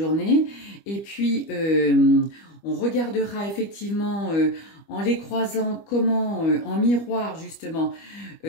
Et puis, on regardera effectivement en les croisant comment, en miroir justement,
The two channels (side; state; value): right; late; 25 ms